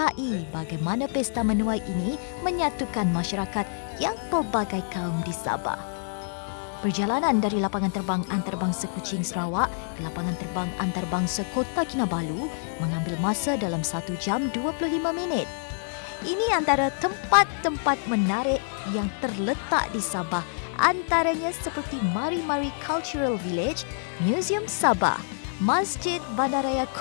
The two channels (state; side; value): silent; right; digital silence